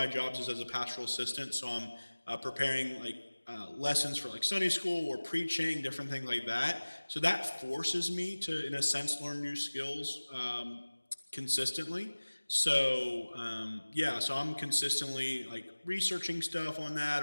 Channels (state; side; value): inverted; both; correlation -1.00